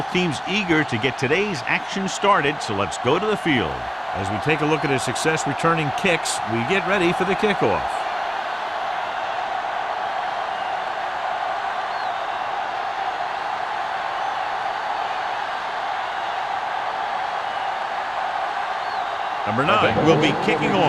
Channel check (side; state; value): both; identical; correlation 1.00